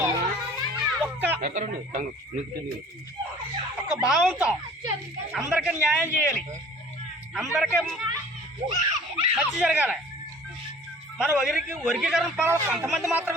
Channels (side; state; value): both; normal; correlation 0.48